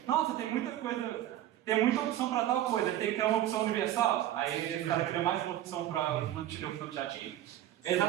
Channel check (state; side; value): quieter; left; 12.9 dB